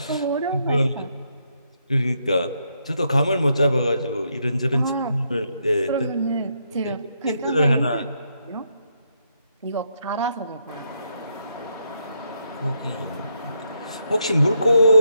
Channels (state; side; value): inverted; both; correlation -0.77